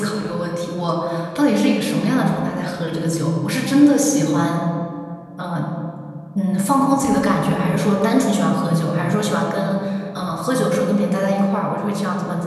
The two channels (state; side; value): identical; both; correlation 1.00